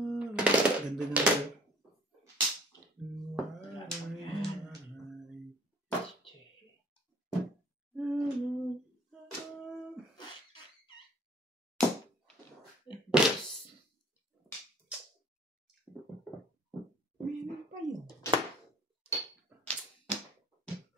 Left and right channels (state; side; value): normal; both; correlation 0.51